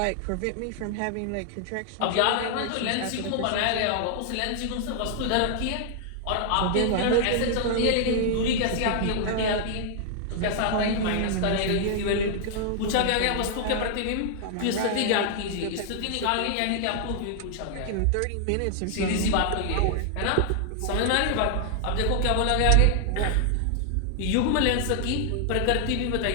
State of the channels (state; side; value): different; both; correlation 0.00